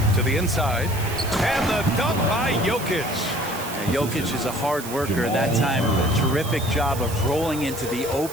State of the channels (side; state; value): right; noise; hiss, 11 dB below the sound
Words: To the inside. And the dunk by Jokic. Jokic is a hard worker. That time, a terrific job of rolling into the